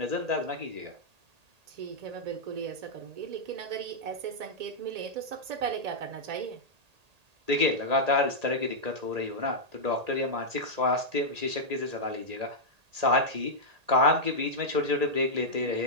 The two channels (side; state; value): left; late; 1.8 ms